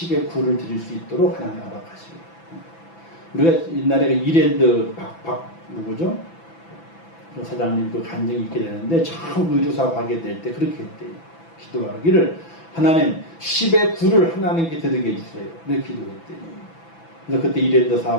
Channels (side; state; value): right; late; 6.0 ms